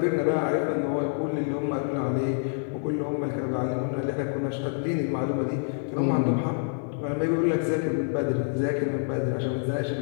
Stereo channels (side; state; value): right; silent; digital silence